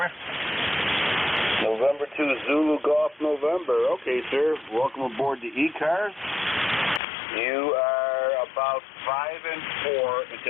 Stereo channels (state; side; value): drops out; right; at 7.0 s